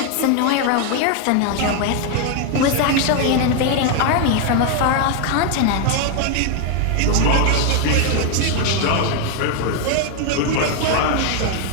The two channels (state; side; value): different; both; correlation 0.01